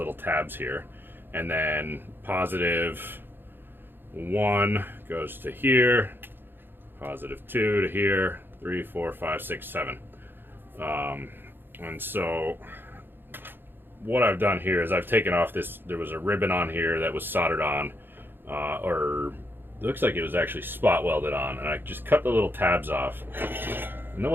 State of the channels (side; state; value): left; late; 0.099 ms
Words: tabs here, and then positive 1 goes to here, positive 2 to here, 3, 4, 5, 6, 7. And so what I've done here is I've taken off this, there was a ribbon on here that was soldered on, or it looks like it was actually spot welded on, and I just cut the little tabs off. And then